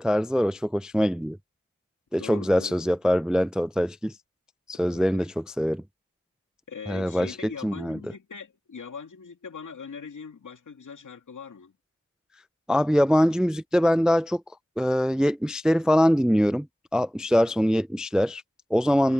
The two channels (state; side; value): normal; both; correlation 0.98